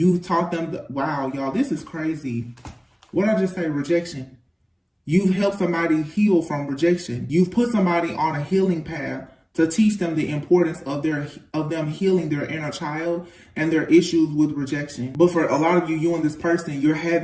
taught them. Wow, y'all, this is crazy. What did I just say? Rejection. You've helped somebody heal from rejection. You've put somebody on a healing path to teach them the importance of them healing their inner child and their issues with rejection. But for a lot of you, you and this person, you're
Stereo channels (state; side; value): identical; both; correlation 1.00